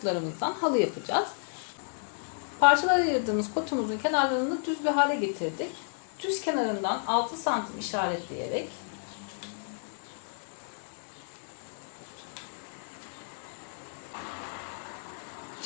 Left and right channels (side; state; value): right; silent; digital silence